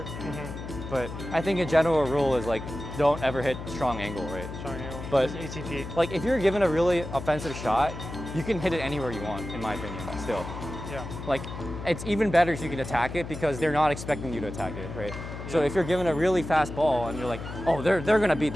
But I think a general rule is like don't ever hit strong angle, right? Strong angle. But just ATP. like if you're given a really offensive shot, you can hit it anywhere you want, in my opinion. Still. Like it's even better if you can attack it because they're not expecting you to attack it, right? So if you're given a really fast ball and you're like, oh, they're gonna hit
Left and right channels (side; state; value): left; noise; hum, 9 dB below the sound